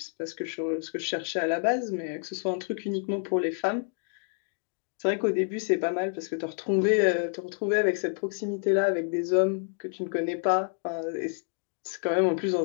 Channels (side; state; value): right; silent; 59 dB below the other